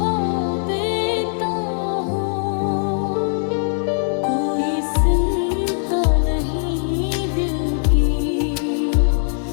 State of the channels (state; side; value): silent; right; digital silence